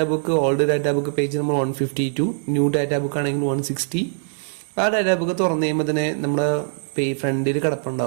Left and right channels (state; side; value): silent; left; digital silence